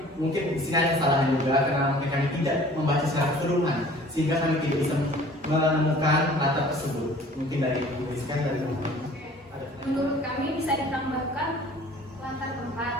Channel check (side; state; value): both; normal; correlation 0.49